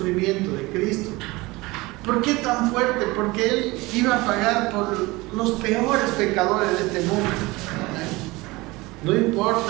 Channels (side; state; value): left; quieter; 22.0 dB